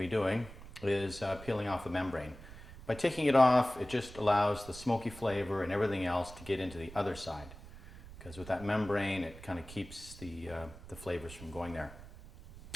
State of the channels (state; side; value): noise; right; rumble, 16 dB below the sound